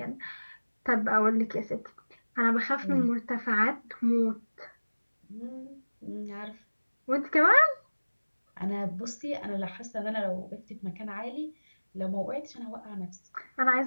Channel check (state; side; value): inverted; both; correlation -1.00